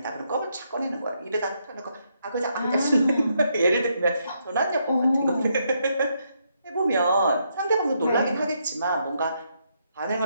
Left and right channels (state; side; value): inverted; both; correlation -0.77